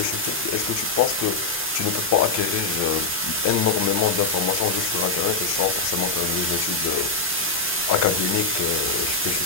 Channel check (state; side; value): quieter; right; 3.4 dB